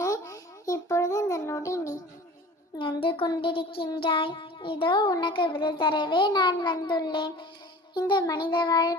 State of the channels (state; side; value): normal; both; correlation 0.41